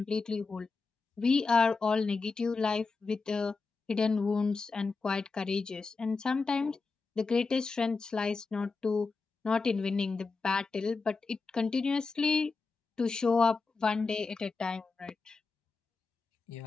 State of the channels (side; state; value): right; quieter; 4.3 dB